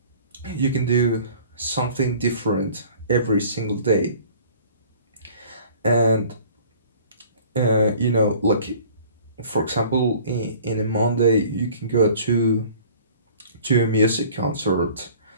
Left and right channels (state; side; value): inverted; both; correlation -0.49